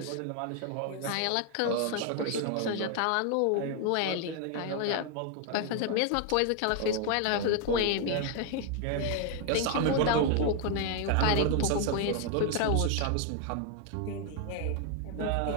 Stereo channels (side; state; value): both; different; correlation 0.00